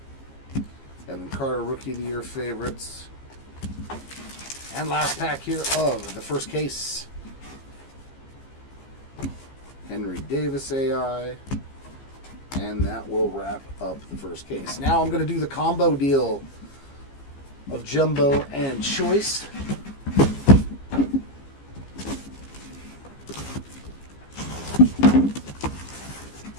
Evan Carter, Rookie of the Year favorites. And last pack here of the first case. Henry Davis AI. And that will wrap up the first case. Now I'm going to do the combo deal of Jumbo and Choice.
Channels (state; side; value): late; right; 15 ms